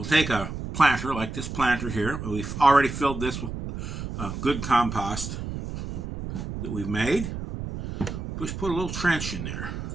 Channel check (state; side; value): noise; right; rumble, 7 dB below the sound